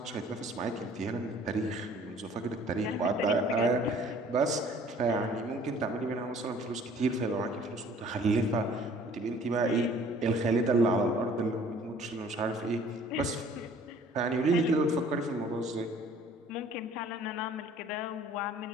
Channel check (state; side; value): normal; both; correlation 0.53